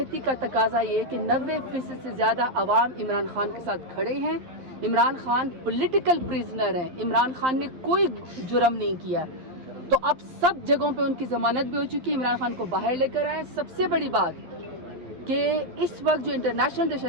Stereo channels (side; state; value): left; late; 11 ms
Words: کا تقاضا یہ کہ 90% سے زیادہ عوام عمران خان کے ساتھ کھڑے ہیں. عمران خان پولیٹیکل پریزنر ہیں, عمران خان نے کوئی جرم نہیں کیا, تو اب سب جگہوں پہ ان کی ضمانت بھی ہو چکی ہے. عمران خان کو باہر لے کر آئے. سب سے بڑی بات کہ اس وقت جو انٹرنیشنل